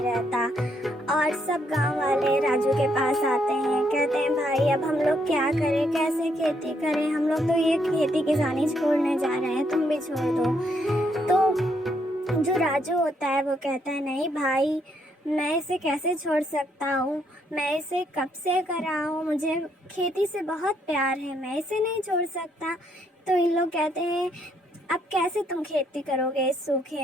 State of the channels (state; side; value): normal; both; correlation 0.73